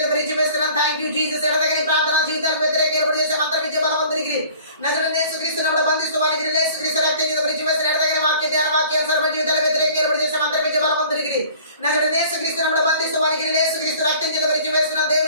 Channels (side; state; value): both; inverted; correlation -0.49